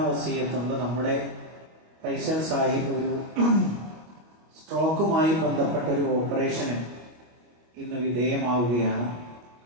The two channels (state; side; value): late; left; 25 ms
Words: വസിയത്തുണ്ട്. നമ്മുടെ ഫൈസൽ സാഹിബ് ഒരു സ്ട്രോക്കുമായി ബന്ധപ്പെട്ട ഒരു ഓപ്പറേഷന് ഇന്ന് വിധേയമാവുകയാണ്.